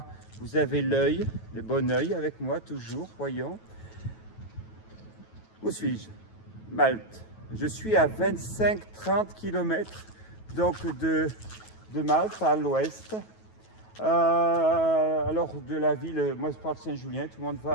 vous avez l'œil, le bon œil avec moi, toujours, voyons. Où suis-je? Malte. Je suis à 25-30 km donc de Malte, à l'ouest. Alors de la ville, moi je parle de Saint-Julien, tout le monde va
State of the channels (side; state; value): right; late; 9.2 ms